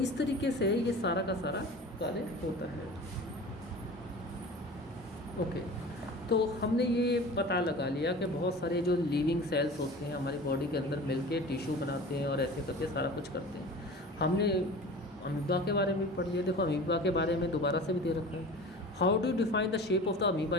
तरीके से ये सारा का सारा कार्य होता है। ओके, तो हमने ये पता लगा लिया कि बहुत सारे जो लिविंग सेल्स होते हैं हमारी बॉडी के अंदर मिलके टिश्यू बनाते हैं और ऐसे करके सारा कुछ करते हैं। हमने अमीबा के बारे में भी पढ़ लिया। देखो अमीबा के बारे में दोबारा से भी दे रखा है। How do define the shape of the amoeba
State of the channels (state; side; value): normal; both; correlation 0.38